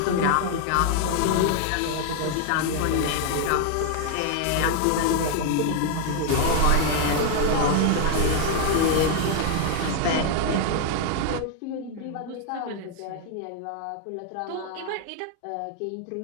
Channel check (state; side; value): different; both; correlation 0.00